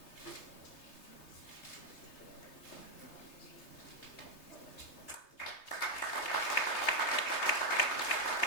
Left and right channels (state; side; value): late; right; 3.3 ms